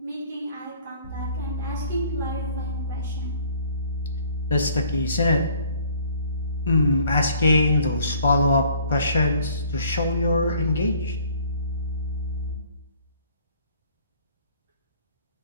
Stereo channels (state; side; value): inverted; both; correlation -0.56